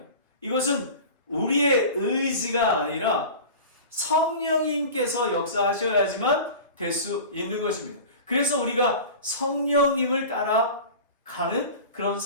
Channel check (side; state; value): both; inverted; correlation -0.35